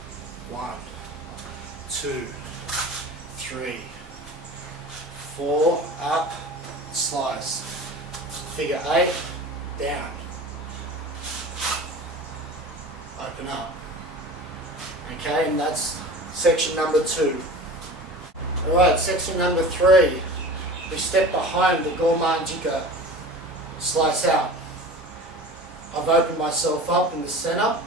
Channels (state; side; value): normal; both; correlation 0.37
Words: 1, 2, 3, 4, up, slice. Figure 8, down. Open up. Okay, and that's section number 2. Alright, section number 3. We step behind the gourmand jika, slice out. I've opened myself up in the center.